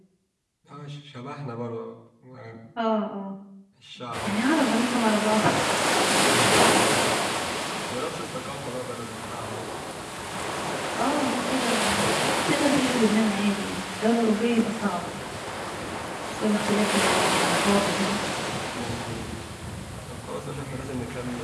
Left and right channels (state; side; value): identical; both; correlation 1.00